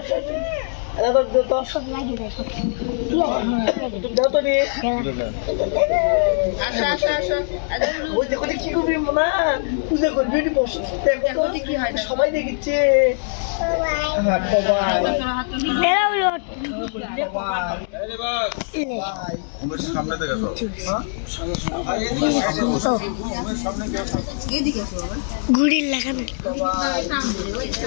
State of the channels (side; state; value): right; silent; digital silence